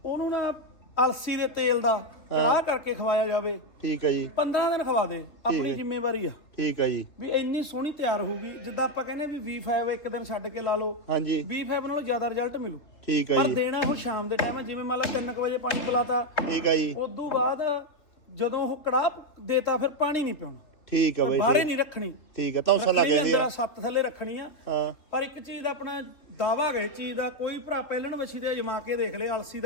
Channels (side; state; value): right; late; 3.1 ms